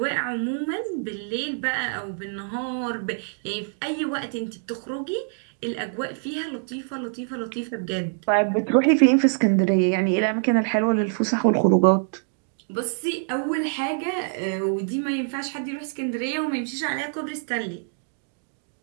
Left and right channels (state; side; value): silent; left; digital silence